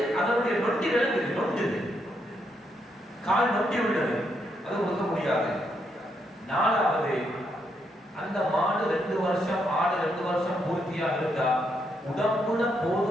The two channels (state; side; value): normal; both; correlation 0.78